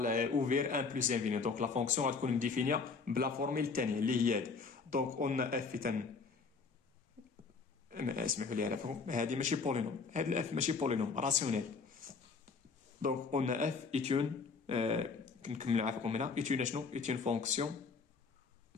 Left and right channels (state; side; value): quieter; right; 4.8 dB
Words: اوفير 1 بلس انفيني. دونك لا فونكسيون غتكون مديفينيا بلا فورميل الثانيه اللي هي هادي. دونك قلنا اف اسمحوا لي على فهم، هذه ماشي بولينوم، هاد الاف ماشي بولينوم راسيونيل. دونك قلنا اف ايتون كنكمل عافاكم هنا ايتون شنو؟ ايتون فونكسيون